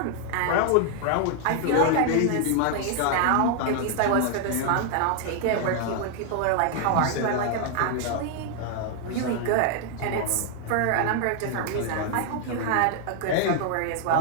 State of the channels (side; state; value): both; different; correlation 0.00